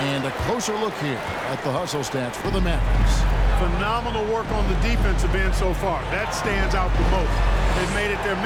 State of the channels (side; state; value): both; identical; correlation 1.00